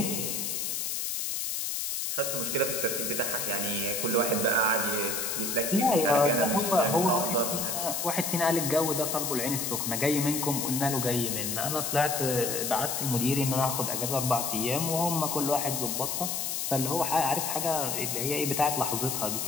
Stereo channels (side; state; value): left; noise; hiss, 1 dB below the sound